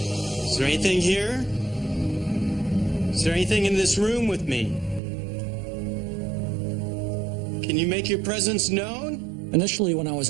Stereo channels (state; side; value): drops out; left; at 5.0 s